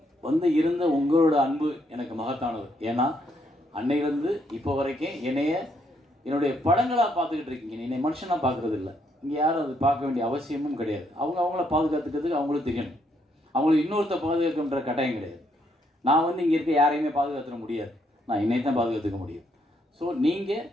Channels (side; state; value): both; normal; correlation 0.73